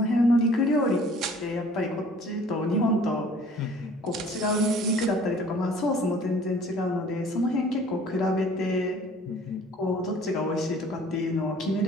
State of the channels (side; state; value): both; normal; correlation 0.52